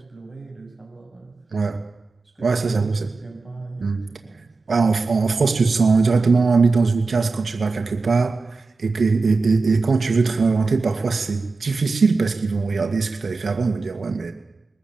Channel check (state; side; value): quieter; left; 4.0 dB